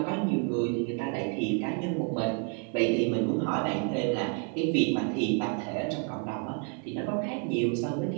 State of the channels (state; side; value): quieter; left; 38.4 dB